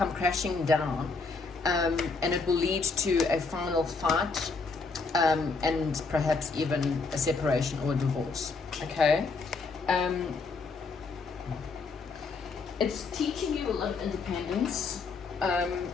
crashing down, and it will lead to a final fight, and perhaps even a separation or a divorce. Okay, it's teaching you a lot of independence.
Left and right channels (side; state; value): right; quieter; 4.3 dB